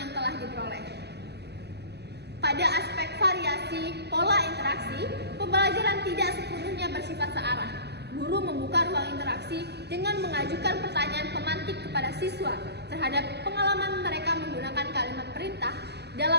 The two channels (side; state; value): left; late; 0.48 ms